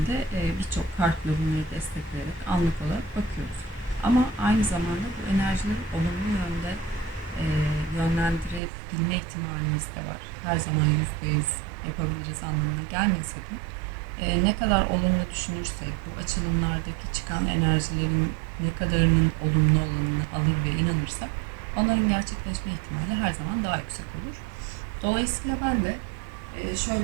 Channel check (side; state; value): left; drops out; at 8.6 s